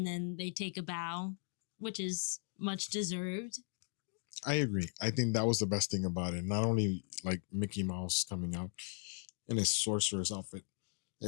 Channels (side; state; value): right; silent; 53 dB below the other